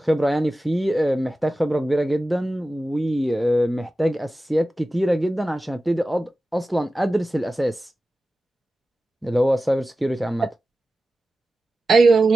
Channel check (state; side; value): normal; both; correlation 0.94